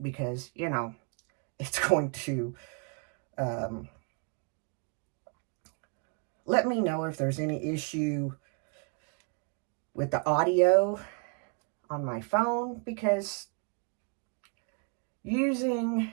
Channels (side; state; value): left; quieter; 37.7 dB